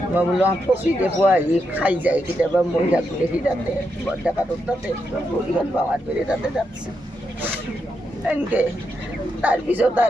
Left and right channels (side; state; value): both; normal; correlation 0.83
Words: মই বোলো ফচিতে পোৱা আহি খাই যায় কেতিয়াবা। মই থাকোঁ দেখি তাতে বৰডেকাটোৰ তাতে ভৰিখন পাৱাৰ পেৰে তাতে যাচ্ছে এনেকৈ। তাৰপিছত